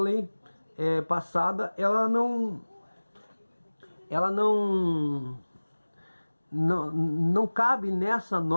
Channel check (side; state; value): both; inverted; correlation -1.00